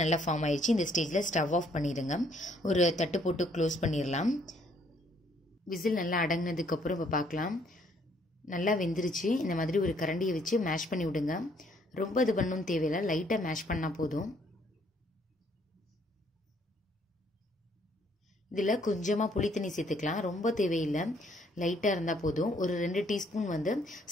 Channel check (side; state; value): both; normal; correlation 0.66